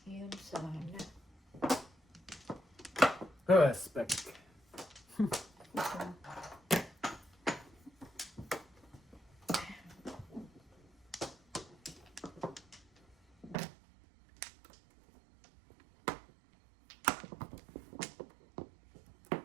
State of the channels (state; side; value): drops out; left; at 13.6 s